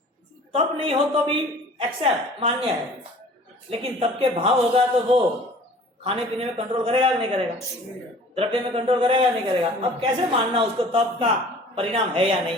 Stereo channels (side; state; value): both; normal; correlation 0.48